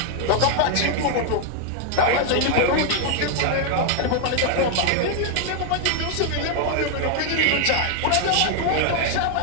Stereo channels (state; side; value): different; both; correlation 0.00